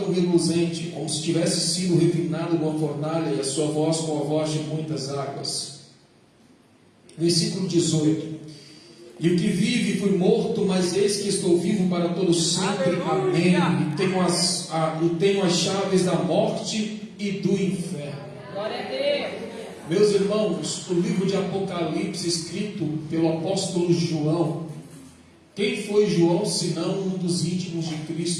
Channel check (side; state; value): both; identical; correlation 1.00